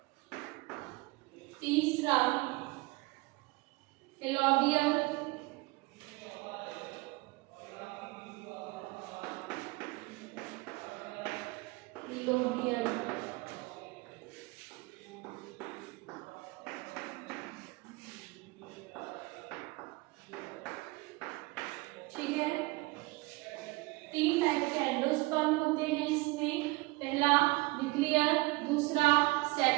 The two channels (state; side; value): quieter; left; 23.5 dB